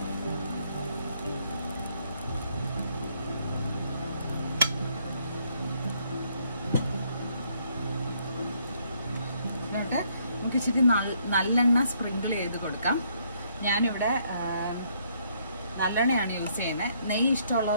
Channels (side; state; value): both; inverted; correlation -0.70